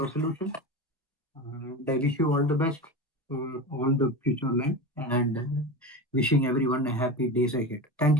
I wish you all the best for all the future life and wishing everyone a happy days ahead. Thank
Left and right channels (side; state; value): both; normal; correlation 0.25